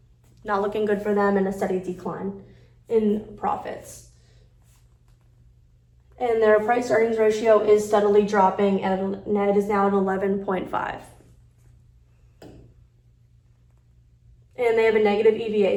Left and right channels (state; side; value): identical; both; correlation 1.00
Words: not looking good for them, and a steady decline in profits. And their price earnings ratio is steadily dropping, and it is now at 11.5. And they have a negative EVA